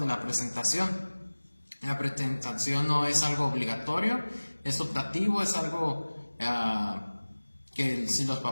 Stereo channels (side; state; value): both; inverted; correlation -1.00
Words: la presentación. La presentación no es algo obligatorio, es optativo, es algo que si los